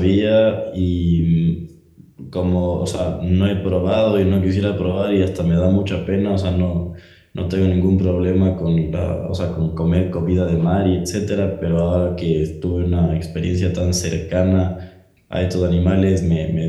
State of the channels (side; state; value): both; identical; correlation 1.00